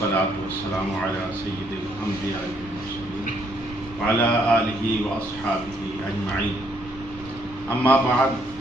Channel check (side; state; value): right; noise; rumble, 20 dB below the sound